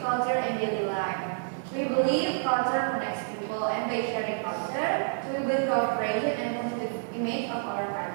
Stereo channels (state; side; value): silent; left; digital silence